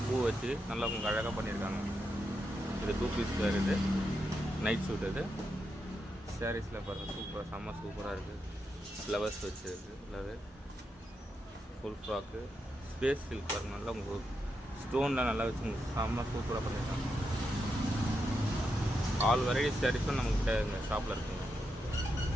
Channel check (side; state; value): both; normal; correlation 0.84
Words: பூ வச்சு நல்லா உங்களுக்கு அழகாக பண்ணியிருக்காங்க. இது 2 பீஸ் வேர், இது நைட் சூட். இது சாரீஸில் பாருங்கள், செம்ம சூப்பராக இருக்குது. ஃப்ளவர்ஸ் வச்சுருக்கு, ஃபுல்லாகவே ஃபுல் ஃப்ராக்கு ஸ்பேஸ் சில்க் பாருங்கள். நல்லா உங்களுக்கு ஸ்டோன்லாம் நல்லா வச்சு உங்களுக்கு செம்ம சூப்பராக பண்ணியிருக்காங்க. ஆல் வெரைட்டி சாரீஸும் நம்மக்கிட்ட இந்த ஷாப்பில் இருக்குங்க.